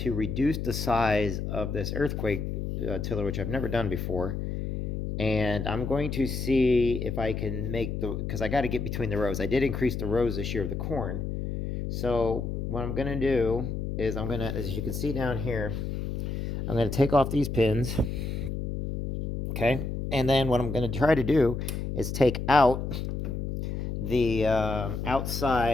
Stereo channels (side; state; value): left; noise; hum, 3 dB below the sound